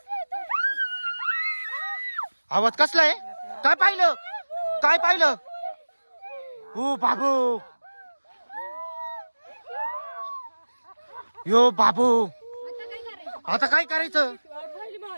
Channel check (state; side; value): inverted; both; correlation -1.00